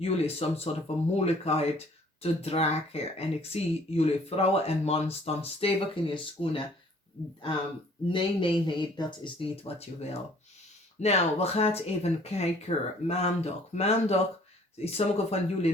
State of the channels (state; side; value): normal; both; correlation 0.56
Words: some sort of a moeilijkheid te dragen. En ik zie jullie vrouwen en man staan stevig in je schoenen. Nee, dat is niet wat je wil. Nou, we gaan even kijken. Maandag. Sommige van